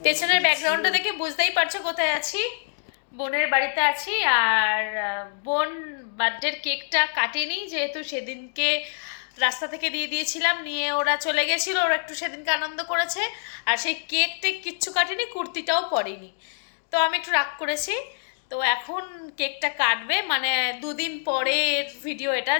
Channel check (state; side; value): silent; right; digital silence